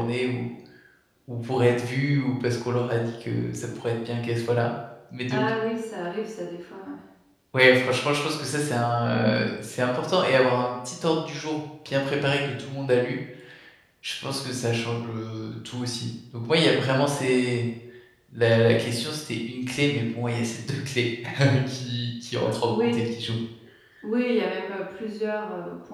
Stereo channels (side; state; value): both; identical; correlation 1.00